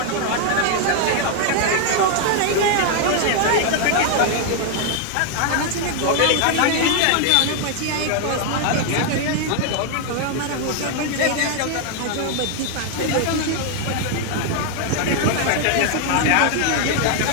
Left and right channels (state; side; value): different; both; correlation 0.00